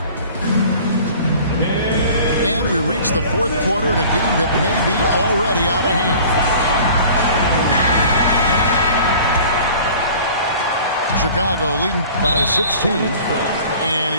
And we reach the fourth quarter in a game that may be already out of hand. Chicago leading by 16. And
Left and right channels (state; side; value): inverted; both; correlation -0.46